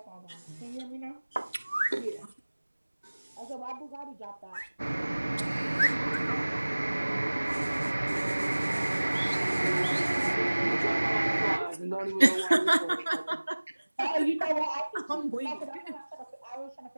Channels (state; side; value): inverted; both; correlation -1.00